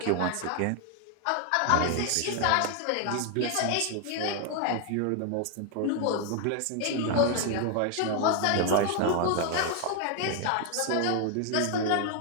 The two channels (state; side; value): different; both; correlation 0.00